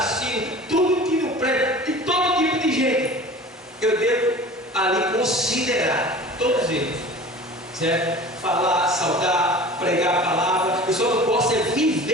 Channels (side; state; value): both; normal; correlation 0.40